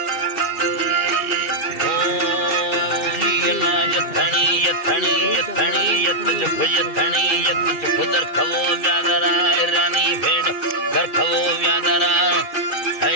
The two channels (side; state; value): right; late; 2.3 ms